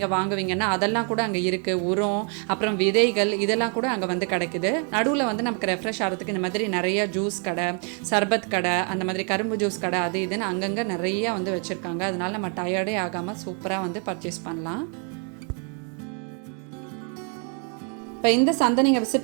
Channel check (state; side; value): quieter; left; 40.0 dB